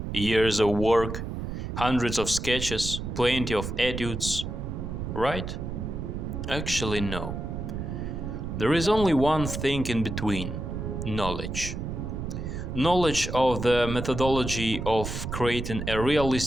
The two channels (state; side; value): noise; right; rumble, 5 dB below the sound